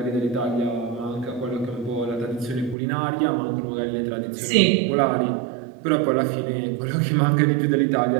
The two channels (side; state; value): left; drops out; at 2.8 s